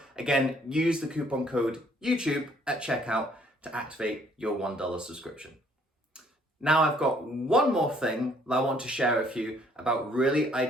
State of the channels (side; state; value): both; normal; correlation 0.63